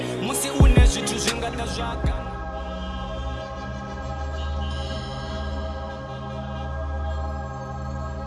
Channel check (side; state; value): both; identical; correlation 1.00